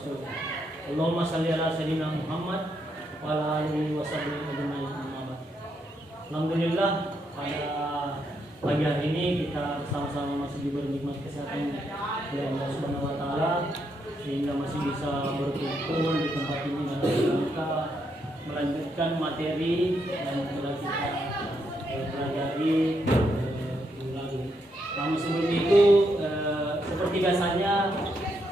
Allahumma shalli ala sayyidina Muhammad wa ala alihi wa sahbihi ajma'in. Alhamdulillah, pada pagi hari ini kita bersama-sama masih diberi nikmat kesehatan oleh Allah Subhanahu wa taala sehingga masih bisa berkumpul di tempat ini dan kita melanjutkan materi yang telah kita pelajari ulang. Namun sebelum itu seperti biasanya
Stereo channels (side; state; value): both; normal; correlation 0.78